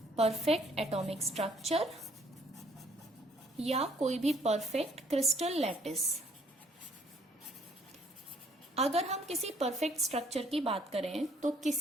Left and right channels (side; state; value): both; normal; correlation 0.63